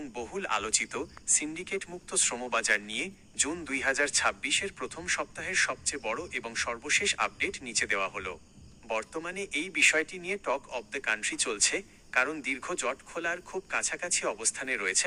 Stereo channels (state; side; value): identical; both; correlation 1.00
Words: বহুল আলোচিত সিন্ডিকেট মুক্ত শ্রমবাজার নিয়ে জুন 2026-এর প্রথম সপ্তাহের সবচেয়ে বড় এবং সর্বশেষ আপডেট নিচে দেওয়া হলো। বর্তমানে এই বিষয়টি নিয়ে টক অব দ্য কান্ট্রি চলছে, কারণ দীর্ঘ জট খোলার খুব কাছাকাছি অবস্থানে রয়েছে